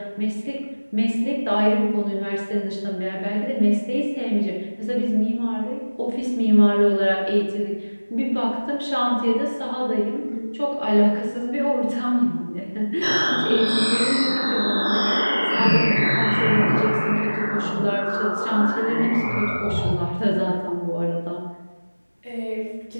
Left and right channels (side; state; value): both; inverted; correlation -1.00